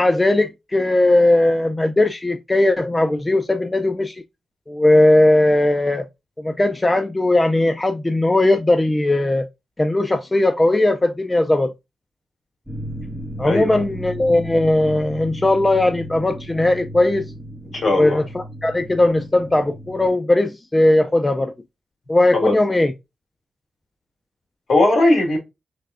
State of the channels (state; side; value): normal; both; correlation 0.97